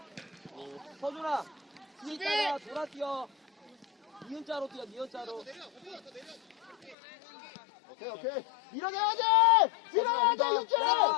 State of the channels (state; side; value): drops out; right; at 7.0 s